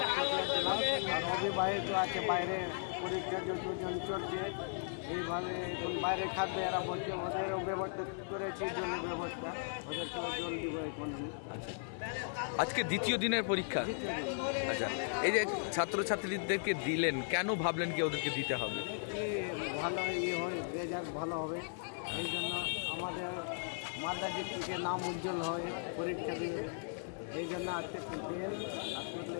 আর অভিভাবক আছে বাইরে পরীক্ষা যতজন চলছে, এইভাবে এখন বাইরে খাদ্যে এরা বলছে ওদেরও ব্যবস্থা করেছি, জলের ব্যবস্থা, ওদেরকে জল দিব এখন আমি। আচ্ছা, আজকে দ্বিতীয় দিনের পরীক্ষা। আচ্ছা, এই যে ছাত্রছাত্রীদেরকে দিলেন, কেন ভাবলেন কি ওদেরকে দিতে হবে? ভালো হয়, রেজাল্ট ভালো হবে, এই জন্য আমাদের মালদা ডিস্ট্রিক্টে নাম উজ্জ্বল হয় পরীক্ষা দিয়ে, এই জন্য আজকে দিয়ে।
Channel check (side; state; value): right; silent; 53 dB below the other